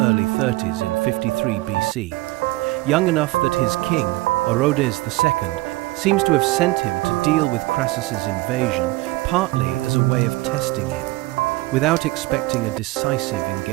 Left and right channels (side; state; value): left; quieter; 20.2 dB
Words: 30s in 53 BC. Young enough that his king, Orodes II, seems to have sent him to deal with Crassus's invasion, partly as a way of testing him, without expecting a decisive